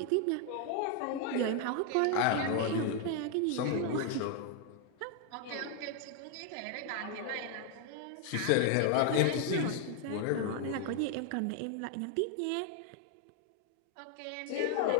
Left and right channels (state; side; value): different; both; correlation 0.00